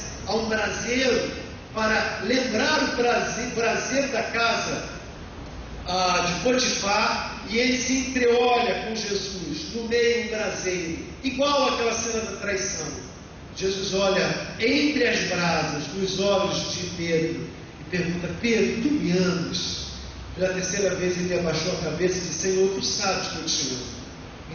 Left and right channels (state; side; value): identical; both; correlation 1.00